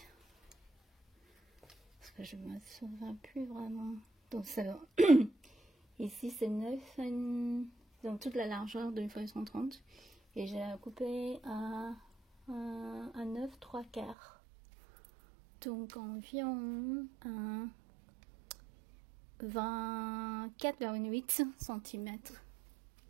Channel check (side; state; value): left; drops out; at 14.2 s